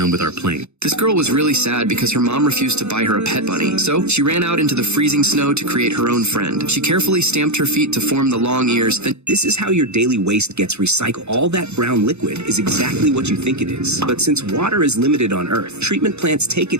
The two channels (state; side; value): late; left; 0.81 ms